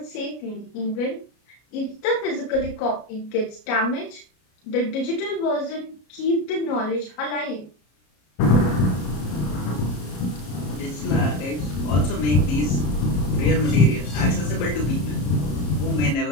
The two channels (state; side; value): late; right; 33 ms